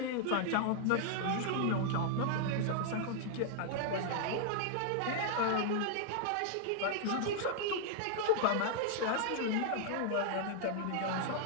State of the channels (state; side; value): different; both; correlation 0.00